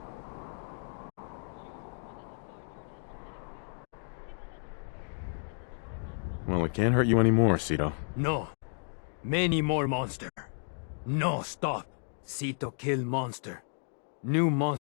Well, it can't hurt you anymore, Sito. No. Many more monster. No, stop. Sito kill monster. New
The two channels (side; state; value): right; silent; 56 dB below the other